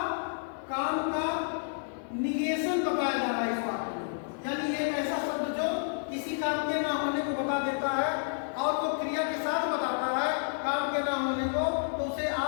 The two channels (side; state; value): right; silent; 58 dB below the other